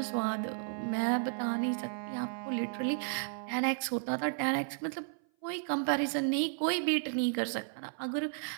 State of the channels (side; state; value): left; silent; 55 dB below the other